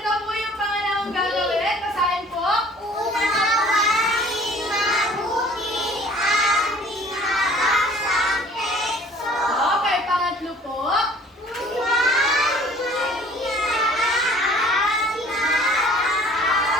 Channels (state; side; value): normal; both; correlation 0.52